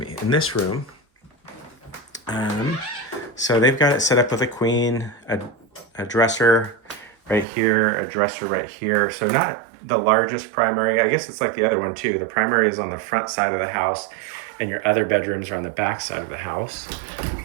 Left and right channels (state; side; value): drops out; left; at 7.5 s